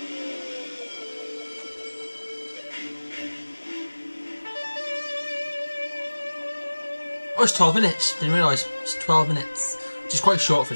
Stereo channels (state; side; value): inverted; both; correlation -1.00